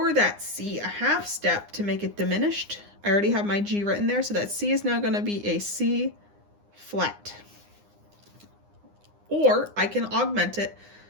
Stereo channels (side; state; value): left; late; 9.8 ms